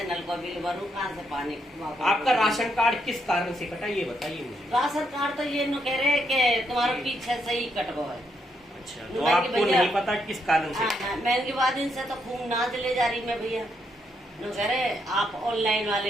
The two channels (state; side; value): normal; both; correlation 0.77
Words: नल का बिल भरूं, कहाँ से पानी। आपका राशन कार्ड किस कारण से कटा, ये बताइए मुझे। राशन कार्ड तो ये न कह रहे कि तुम्हारे पीछे से ही कटवा है। अच्छा, तो आपको नहीं पता किस कारण से? मैं इनके बाद इनसे तो खूब नाच ले जा रही मैं भैया। न कह रहे आप ऑनलाइन वाले